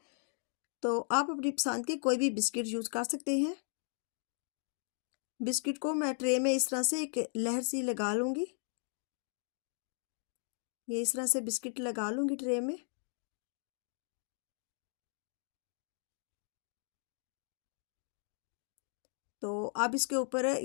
तो आप अपनी पसंद के कोई भी बिस्किट यूज़ कर सकते हैं। बिस्किट को मैं ट्रे में इस तरह से एक लहर सी लगा लूँगी। ये इस तरह से बिस्किट लगा लूँगी ट्रे में। तो अब इसके ऊपर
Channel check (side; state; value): right; silent; 53 dB below the other